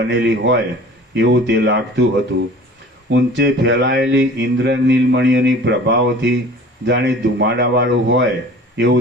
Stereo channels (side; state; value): both; normal; correlation 0.44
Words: હોય એવું તે લાગતું હતું. ઊંચે ફેલાયેલી ઇન્દ્રનીલમણીઓની પ્રભાવથી જાણે ધુમાડાવાળું હોય